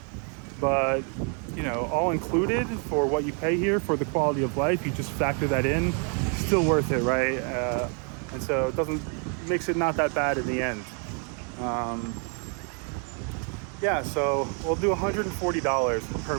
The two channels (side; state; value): left; quieter; 39.9 dB